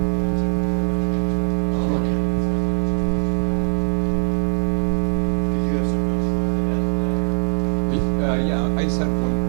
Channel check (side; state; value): left; silent; 65 dB below the other